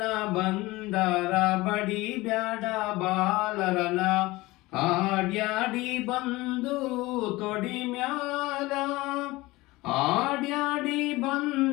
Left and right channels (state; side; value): quieter; right; 20.3 dB